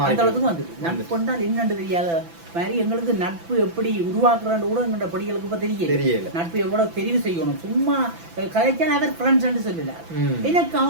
அந்த அளவுக்கு வந்து நட்பு என்றால் என்னன்னு தெரியாத மாதிரி எங்களுக்கு நட்பு எப்படி உருவாக்குறான்னு கூட எங்களோட படிகளுக்கு இப்ப தெரியல. நட்பு எவ்வளவு தெரிவு செய்யணும். சும்மா கதைச்சா அவர் ஃப்ரெண்ட்ஸ் சொல்லல, எனக்கு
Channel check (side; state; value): left; late; 6.0 ms